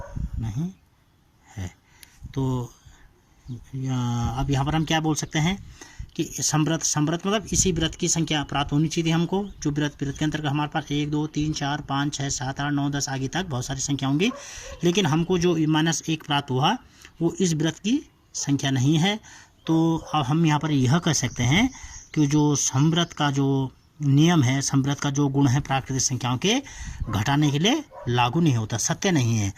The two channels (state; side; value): identical; both; correlation 1.00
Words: नहीं है। तो अब यहाँ पर हम क्या बोल सकते हैं कि समृद्ध मतलब इसी व्रत की संख्या प्राप्त होनी चाहिए हमको, जो व्रत के अंतर्गत हमारे पास 1 2 3 4 5 6 7 8 9 10 आगे तक बहुत सारी संख्या होंगी, लेकिन हमको जो -1 प्राप्त हुआ वो इस व्रत की संख्या नहीं है। तो अब हम यहाँ पर यह कह सकते हैं कि जो समव्रत का जो नियम है, समव्रत का जो गुण है प्राकृतिक संख्याओं के घटाने के लिए लागू नहीं होता, सत्य नहीं है।